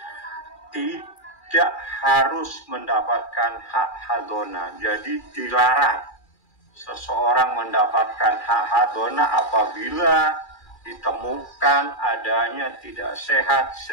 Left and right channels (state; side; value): late; right; 2.4 ms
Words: tidak harus mendapatkan hak hadona. Jadi dilarang seseorang mendapatkan hak hadona apabila ditemukan adanya tidak sehat